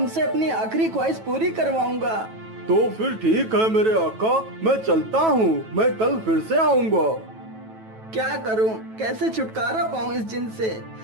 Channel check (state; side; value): late; left; 9.2 ms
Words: अपनी आखिरी ख्वाहिश पूरी करवाऊंगा। तो फिर ठीक है मेरे आका, मैं चलता हूँ, मैं कल फिर से आऊंगा। क्या करूं? कैसे छुटकारा पाऊं इस जिन से?